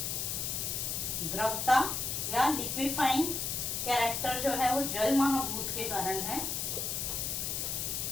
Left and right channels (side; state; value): left; noise; hiss, 1 dB below the sound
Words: द्रवता या लिक्विफाइंग कैरेक्टर जो है वो जल महाभूत के कारण है।